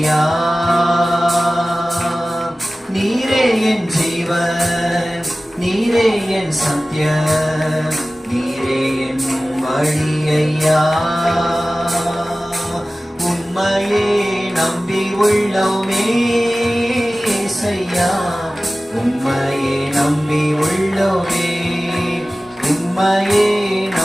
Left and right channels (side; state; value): both; normal; correlation 0.96